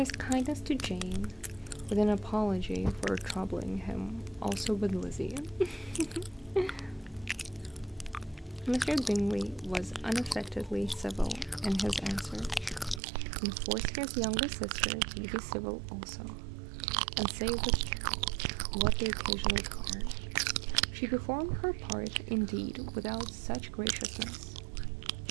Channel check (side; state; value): left; drops out; at 13.0 s